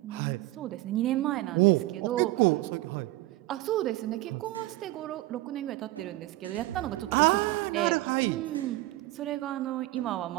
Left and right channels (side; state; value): left; quieter; 18.1 dB